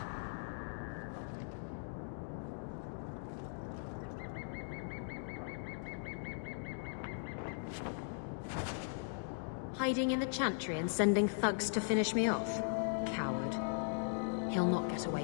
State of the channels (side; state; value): right; silent; digital silence